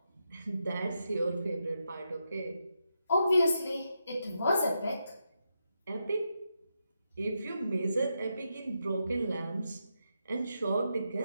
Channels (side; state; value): both; inverted; correlation -0.84